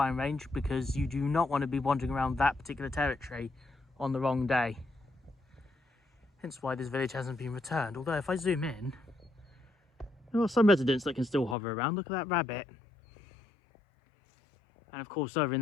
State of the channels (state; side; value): drops out; right; at 11.6 s